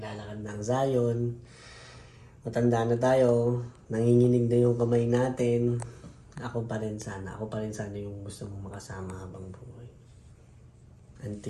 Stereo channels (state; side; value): identical; both; correlation 1.00